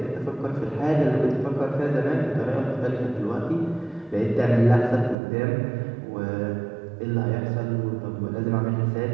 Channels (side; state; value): left; drops out; at 5.2 s